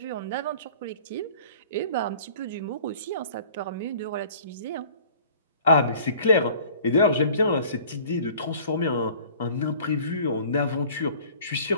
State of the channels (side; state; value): both; inverted; correlation -0.49